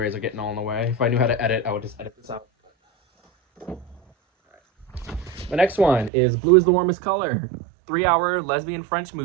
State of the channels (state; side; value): drops out; left; at 6.1 s